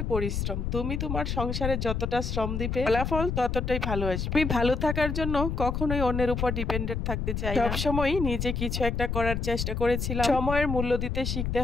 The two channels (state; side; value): noise; left; rumble, 2 dB below the sound